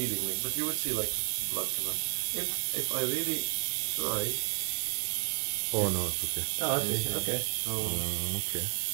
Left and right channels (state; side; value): silent; left; digital silence